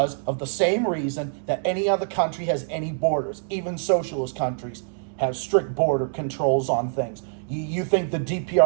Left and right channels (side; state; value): left; silent; digital silence